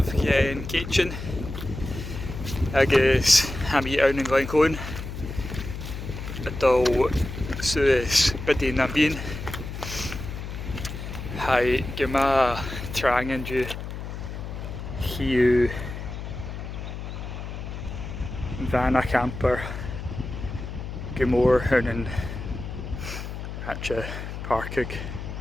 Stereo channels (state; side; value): noise; left; hum, 8 dB below the sound